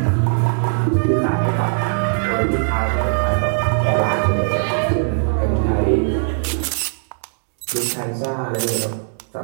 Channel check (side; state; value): left; silent; digital silence